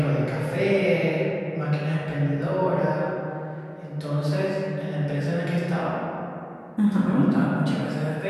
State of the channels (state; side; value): identical; both; correlation 1.00